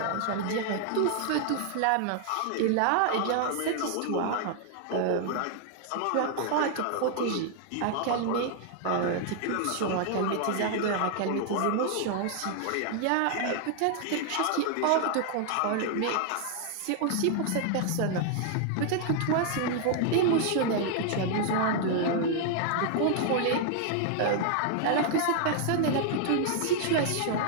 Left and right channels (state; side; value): different; both; correlation 0.00